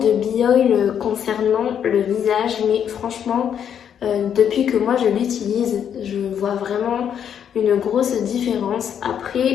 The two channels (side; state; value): right; quieter; 8.7 dB